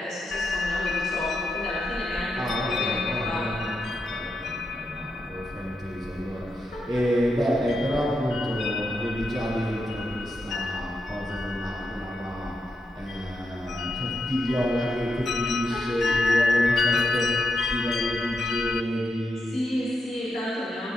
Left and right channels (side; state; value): both; normal; correlation 0.84